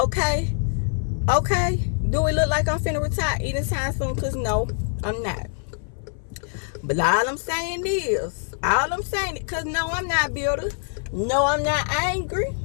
Okay? Do it look like I'm finna retire anytime soon? Because no, I'm not. But all I'm saying is, because no, I'm not bitter. No, I'm not angry.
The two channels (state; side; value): silent; right; 60 dB below the other